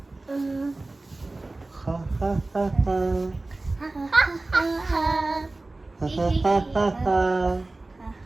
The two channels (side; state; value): left; quieter; 3.0 dB